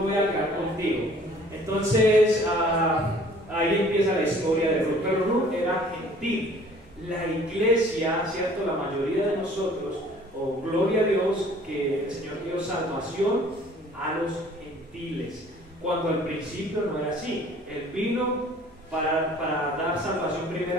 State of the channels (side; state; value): both; normal; correlation 0.53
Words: a quedar contigo. Entonces, ahí empieza la historia de Ruth. Pero Ruth era gentil. La iglesia, ¿cierto? La mayoría de nosotros, gloria a Dios, que el Señor dio salvación a los gentiles, cuando al principio no era así. Él vino para dar salvación